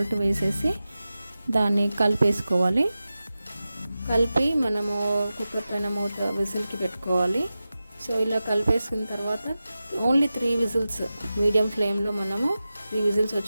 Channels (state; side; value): inverted; both; correlation -0.94